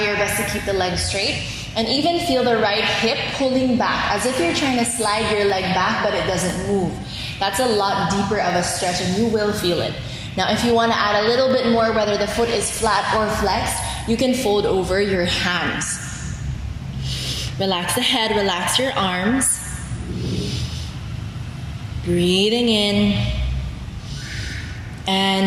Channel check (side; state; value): both; identical; correlation 1.00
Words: best to keep the leg straight. And even feel the right hip pulling back, as if you're trying to slide your leg back, but it doesn't move. That's a lot deeper of a stretch and you will feel it. Now, if you want to add a little bit more, whether the foot is flat or flexed, you can fold over your hands. Relax the head, relax your arms. Breathing in